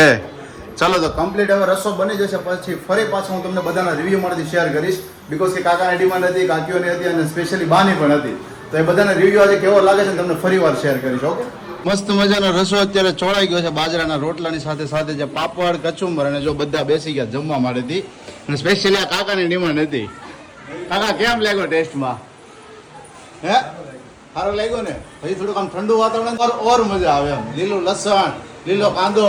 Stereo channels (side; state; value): both; identical; correlation 1.00